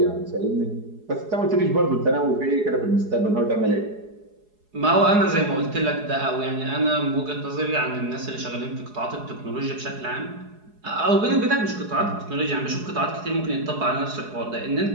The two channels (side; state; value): left; late; 4.8 ms